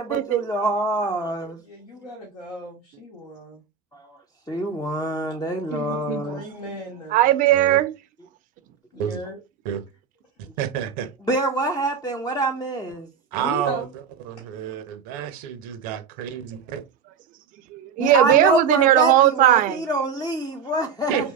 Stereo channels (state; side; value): quieter; left; 6.9 dB